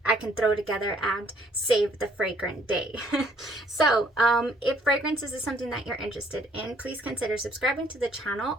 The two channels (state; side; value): normal; both; correlation 0.63